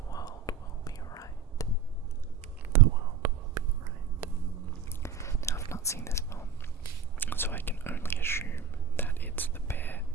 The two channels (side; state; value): left; quieter; 6.5 dB